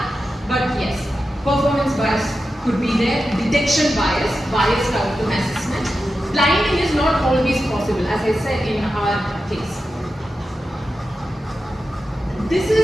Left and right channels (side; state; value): both; normal; correlation 0.91